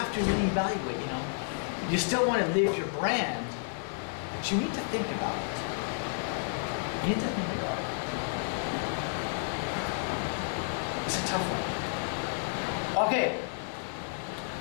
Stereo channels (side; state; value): right; silent; digital silence